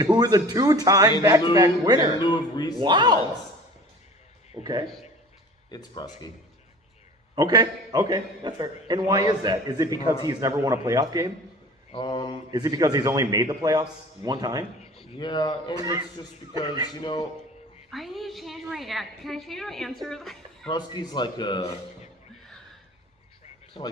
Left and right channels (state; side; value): normal; both; correlation 0.43